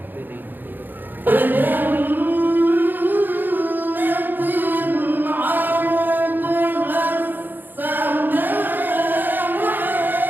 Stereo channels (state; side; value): late; left; 0.091 ms